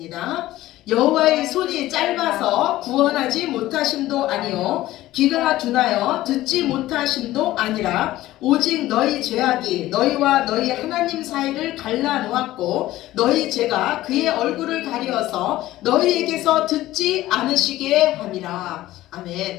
여호와의 손이 짧아서 구원하지 못하심도 아니요 귀가 둔하여 듣지 못하심도 아니라 오직 너희 죄악이 너희와 너희 하나님 사이를 갈라놓았고 너희 죄가 그의 얼굴을 가리어서 너희에게서 듣지 않으시게 함이라.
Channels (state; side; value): quieter; right; 15.8 dB